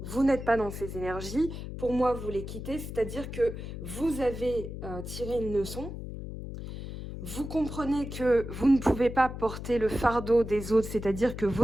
vous n'êtes pas dans ces énergies. Pour moi, vous les quittez, c'est-à-dire que vous avez tiré une leçon. Vous comprenez que vous ne pouvez pas porter le fardeau des autres, c'est-à-dire que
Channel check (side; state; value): left; noise; hum, 8 dB below the sound